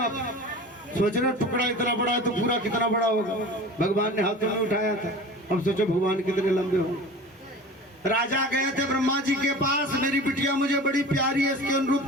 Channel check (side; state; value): both; normal; correlation 0.37